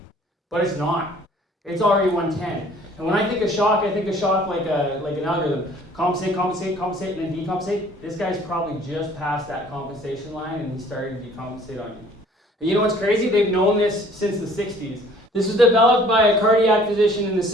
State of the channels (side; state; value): both; normal; correlation 0.54